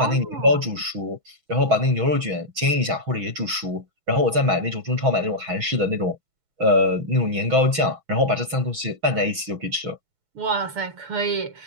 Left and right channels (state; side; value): late; left; 6.2 ms